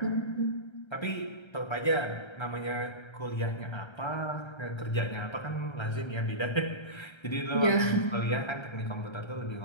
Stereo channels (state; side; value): late; right; 1.3 ms